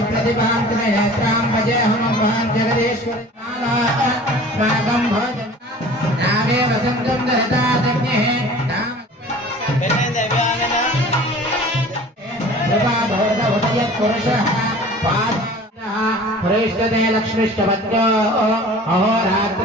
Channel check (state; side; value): normal; both; correlation 0.44